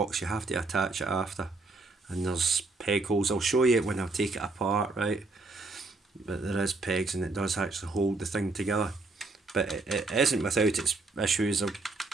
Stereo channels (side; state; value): left; quieter; 3.5 dB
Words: You have to attach it after. And there's peg holes. I'll show you it when I take it apart, right? But there is pegs, and it does actually hold the thing together. But it isn't without its issues of